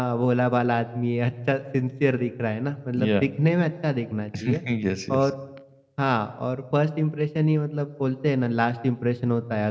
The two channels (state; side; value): identical; both; correlation 1.00